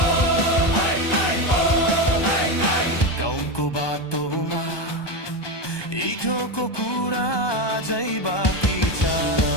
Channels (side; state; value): right; late; 1.2 ms